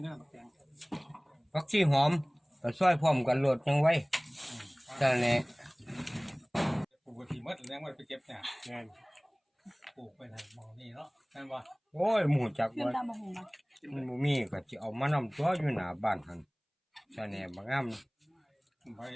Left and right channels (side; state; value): both; identical; correlation 1.00